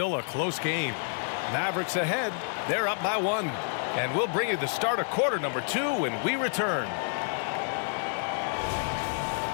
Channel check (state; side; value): silent; right; digital silence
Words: a close game. Mavericks ahead. They're up by 1. And we'll bring you the start of quarter number 2 when we return.